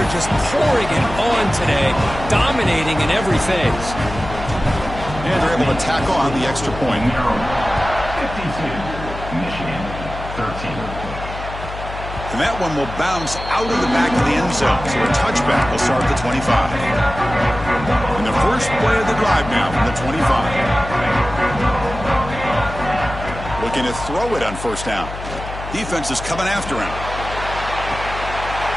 just pouring it on today, dominating in every phase. And they're able to tackle on the extra point. 52, Michigan, 13. And that one will bounce out of the back of the end zone. So a touchback will start at the 25. And the first play of the drive now from the 25. Looking to throw it on 1st down. Defense is coming after him.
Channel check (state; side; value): noise; left; hum, 10 dB below the sound